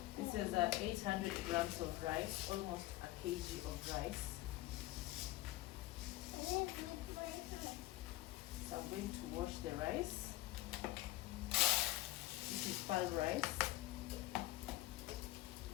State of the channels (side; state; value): right; quieter; 17.6 dB